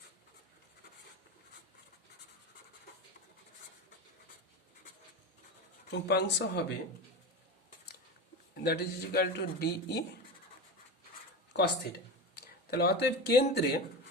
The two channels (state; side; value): normal; both; correlation 0.24